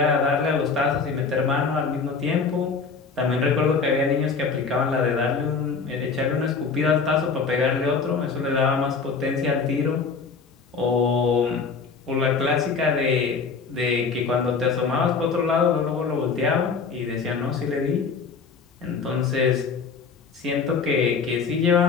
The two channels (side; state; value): right; quieter; 5.1 dB